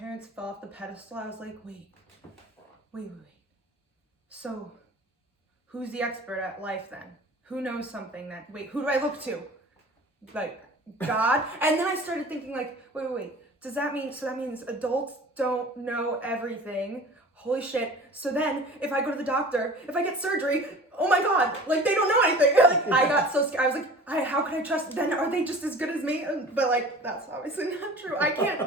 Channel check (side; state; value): both; normal; correlation 0.42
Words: fell off the pedestal, I was like, wait. So, who's the expert at life then? Who knows something who do I look to? Like, God? And then I started thinking like, wait. So that means adults don't know everything. Holy shit. So then, if I go to the doctor, if I get surgery, oh my God, like they don't know anything. Like, I got so scared. I was like, how can I trust? Then are they just as good as me? But like, that's obviously not true. I can't,